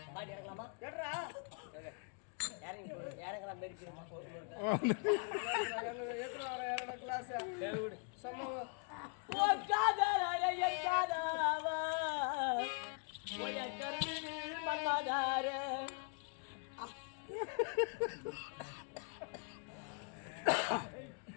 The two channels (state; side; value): quieter; right; 39.3 dB